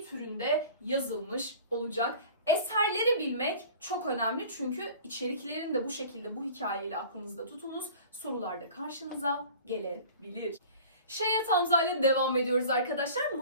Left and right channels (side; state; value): both; inverted; correlation -0.43